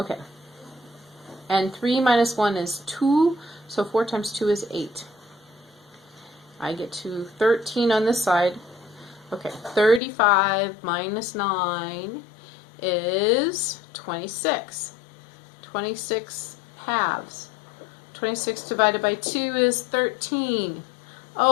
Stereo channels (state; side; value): drops out; right; at 10.0 s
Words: And 3 minus 1 is 2. So 4 times 2 is 8. I get to 13 on this side. Okay, 35 minus 9 is 26. 26 halves. 26 divided by 2 is 13.